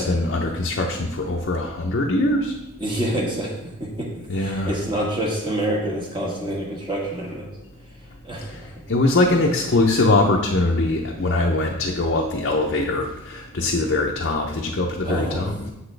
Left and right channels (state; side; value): normal; both; correlation 0.38